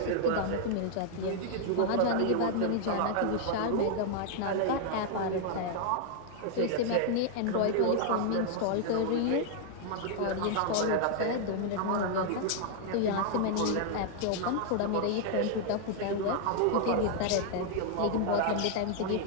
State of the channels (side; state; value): both; different; correlation 0.00